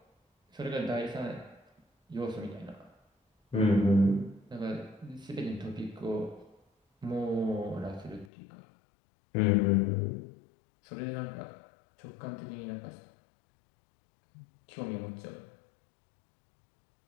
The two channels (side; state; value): right; drops out; at 8.3 s